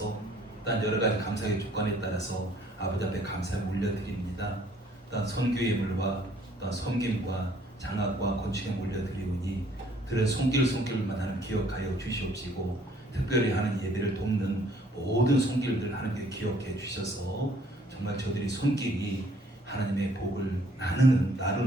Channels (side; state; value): both; normal; correlation 0.61